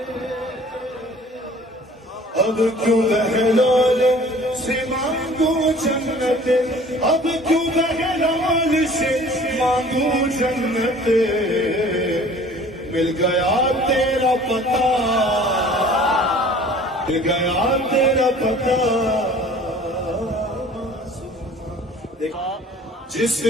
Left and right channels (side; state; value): both; normal; correlation 0.49